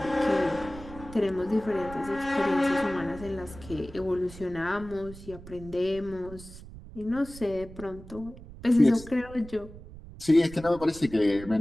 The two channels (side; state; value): right; noise; rumble, 16 dB below the sound